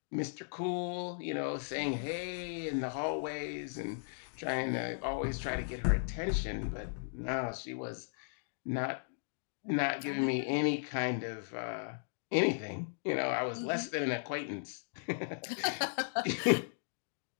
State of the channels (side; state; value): right; silent; digital silence